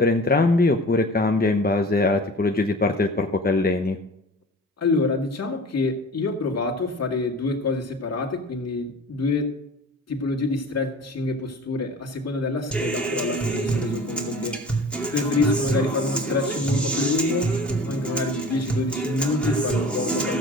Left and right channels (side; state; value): both; normal; correlation 0.41